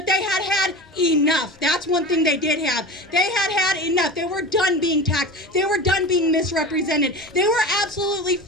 they had enough. That's one thing they did have. They had enough. They were done being taxed. They were done being misrepresented. They were absolutely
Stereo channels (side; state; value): both; normal; correlation 0.31